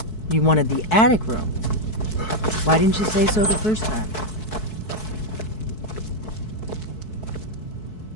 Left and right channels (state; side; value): late; right; 4.6 ms